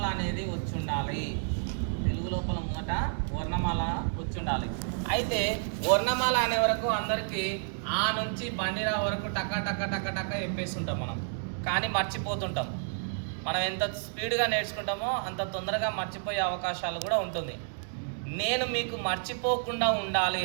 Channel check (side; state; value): left; silent; digital silence